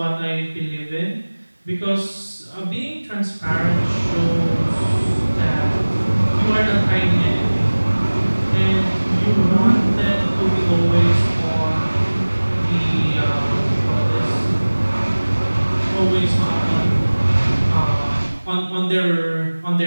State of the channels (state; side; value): inverted; both; correlation -1.00